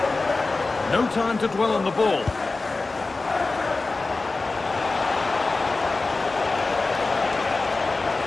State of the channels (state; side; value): quieter; right; 3.6 dB